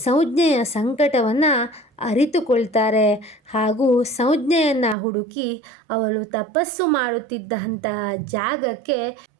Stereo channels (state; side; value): drops out; left; at 5.0 s